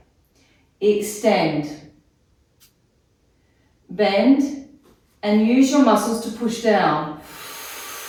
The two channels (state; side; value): identical; both; correlation 1.00